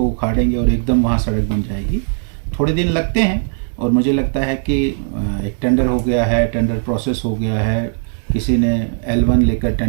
उखाड़ेंगे और एकदम वहाँ सड़क बन जाएगी। थोड़े दिन लगते हैं और मुझे लगता है कि एक टेंडर हो गया है, टेंडर प्रोसेस हो गया है, किसी ने L1 लेकर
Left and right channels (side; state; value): left; silent; digital silence